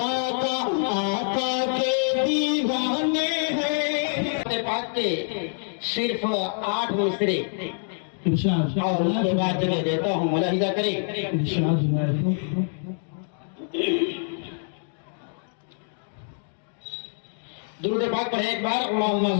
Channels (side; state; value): right; silent; digital silence